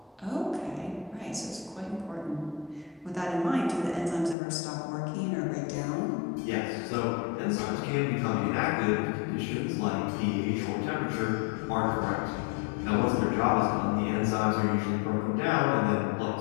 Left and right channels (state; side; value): drops out; right; at 4.4 s